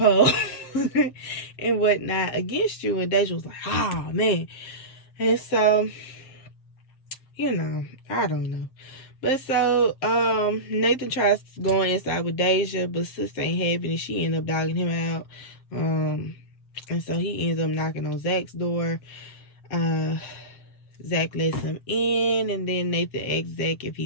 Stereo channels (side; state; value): right; late; 7.5 ms